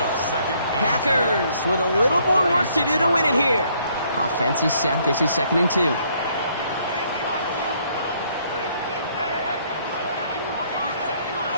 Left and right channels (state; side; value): inverted; both; correlation -0.66